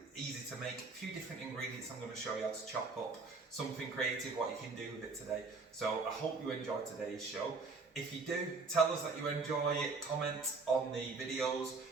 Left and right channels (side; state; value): left; quieter; 4.1 dB